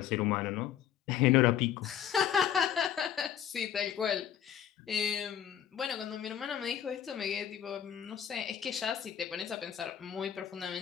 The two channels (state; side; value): quieter; right; 9.7 dB